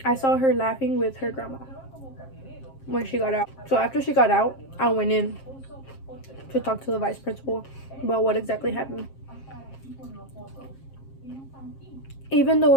I saw her laughing with her grandma when she got out. So after she got out, I went in to talk to the vice principal about what exactly happened. Even though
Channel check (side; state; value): right; late; 7.5 ms